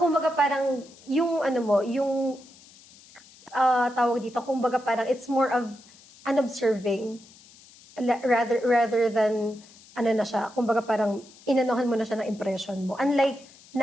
parang, yung ano mo, yung tawag dito, kumbaga parang it's more of an observing rather than ano na siya, kumbaga parang inanohan mo na siya ng impression mo. Unlike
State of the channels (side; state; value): left; noise; hiss, 24 dB below the sound